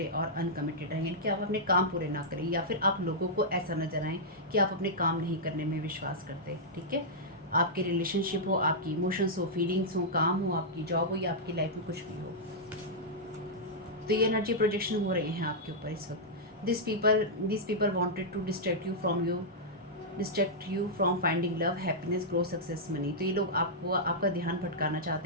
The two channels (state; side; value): normal; both; correlation -0.09